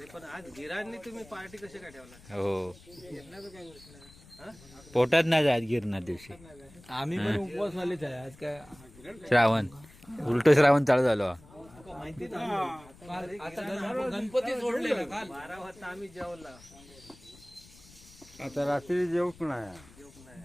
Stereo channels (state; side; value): noise; left; rumble, 23 dB below the sound